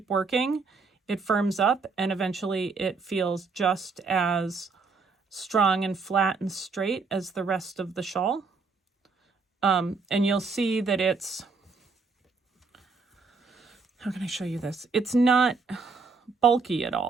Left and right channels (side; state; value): left; quieter; 4.5 dB